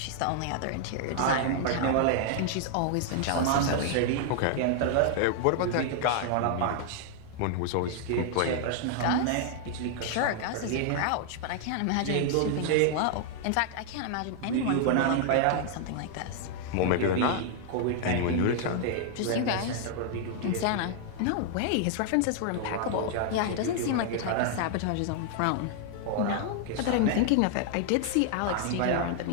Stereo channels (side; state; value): both; different; correlation 0.00